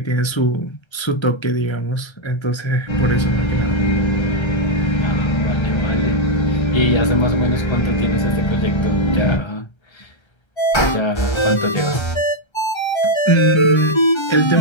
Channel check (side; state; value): right; late; 1.3 ms